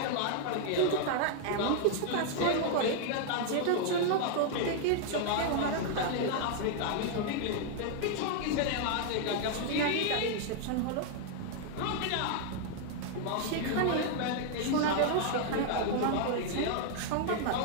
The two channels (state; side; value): different; both; correlation 0.00